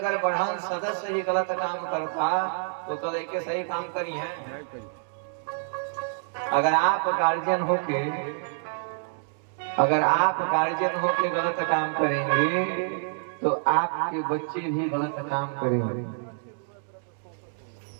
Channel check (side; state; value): left; silent; digital silence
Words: बढ़न सदस्य ही गलत काम करता तो कल के सही काम करी है। अगर आप गार्जियन होके गलत काम करेंगे तो आपके बच्चे भी गलत काम करेंगे।